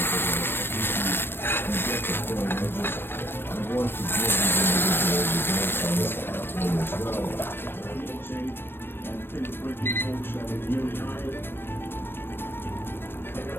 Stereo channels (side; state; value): right; late; 0.10 ms